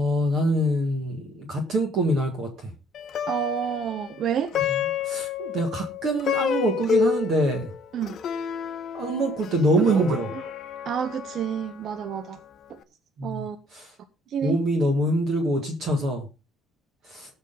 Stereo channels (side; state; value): both; normal; correlation 0.60